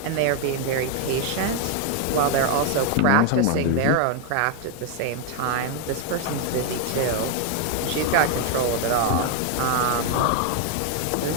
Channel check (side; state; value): both; different; correlation 0.01